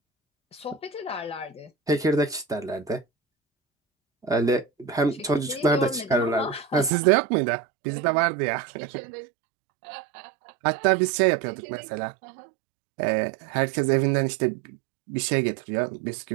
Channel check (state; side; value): drops out; left; at 6.9 s